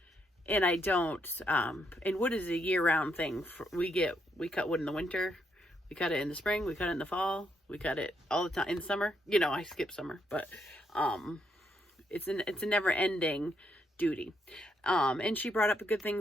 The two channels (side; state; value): both; normal; correlation 0.77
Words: I don't and wood is a year-round thing. We cut wood in the winter, we cut it in the spring, we cut it in the fall, we cut it all the time in the summer. You know, I skip summer, but it's a never-ending duty. And she brought up good